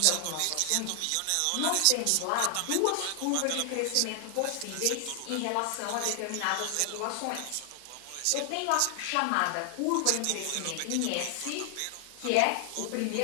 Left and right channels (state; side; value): different; both; correlation 0.00